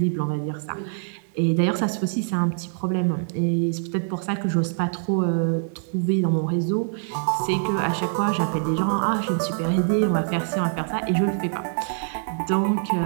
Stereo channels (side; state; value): left; silent; digital silence